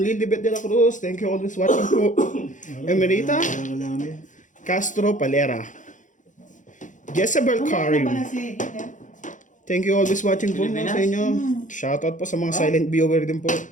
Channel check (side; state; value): right; late; 0.37 ms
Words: Lilibet de la Cruz. Thank you always watching po. Emerita Kailangan namin. Castro Palera. Jezebel Karim. Thank you always watching po Pilipinas? sa inyo. Shoutout po sa mga silent viewer din po.